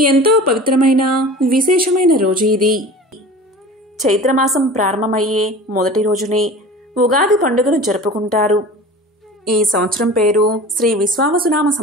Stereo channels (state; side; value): normal; both; correlation 0.38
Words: పవిత్రమైన విశేషమైన రోజు ఇది. చైత్రమాసం ప్రారంభమయ్యే మొదటి రోజునే ఉగాది పండుగను జరుపుకుంటారు. ఈ సంవత్సరం పేరు శ్రీ విశ్వావసునామ